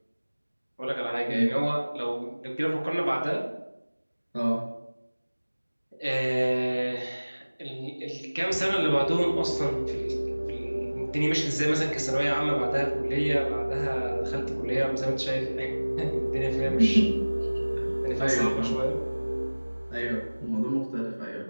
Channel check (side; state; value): both; inverted; correlation -1.00